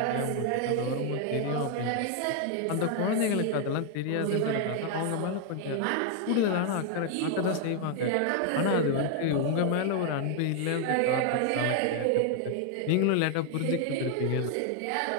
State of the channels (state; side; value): different; both; correlation 0.00